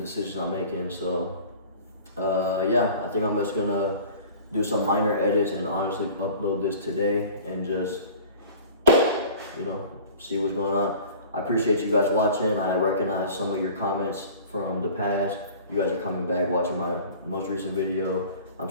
I'm making. So yeah, I think I'm just gonna do some minor edits and honestly upload this today and just, you know, see what's going on. I appreciate you guys watching. I recognize some of your comments from the past. You guys are coming back, watching my most recent video. I'm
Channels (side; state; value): both; inverted; correlation -0.43